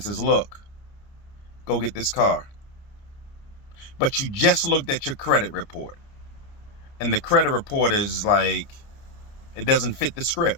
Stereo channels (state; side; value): late; right; 29 ms